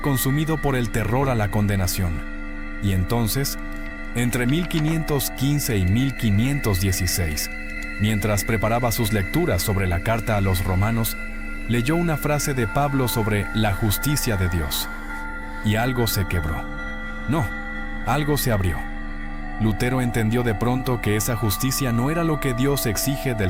consumido por el terror a la condenación. Y entonces, entre 1515 y 1516, mientras preparaba sus lecturas sobre la carta a los romanos, leyó una frase de Pablo sobre la justicia de Dios. Y algo se quebró. No, algo se abrió. Lutero entendió de pronto que esa justicia no era lo que Dios exige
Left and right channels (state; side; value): identical; both; correlation 1.00